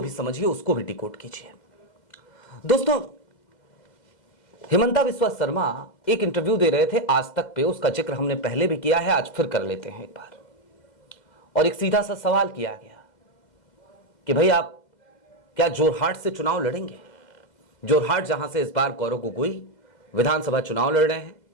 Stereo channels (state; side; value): late; right; 2.0 ms